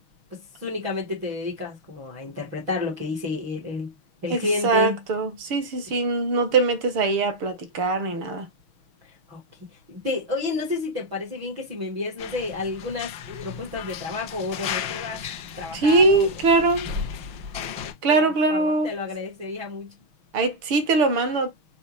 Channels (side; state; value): left; late; 6.3 ms